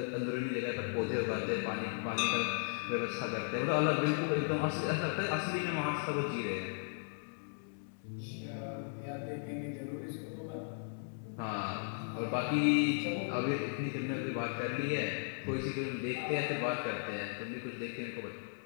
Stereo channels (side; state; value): right; silent; digital silence